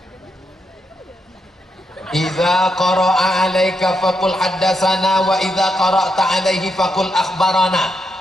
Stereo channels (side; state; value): both; normal; correlation 0.82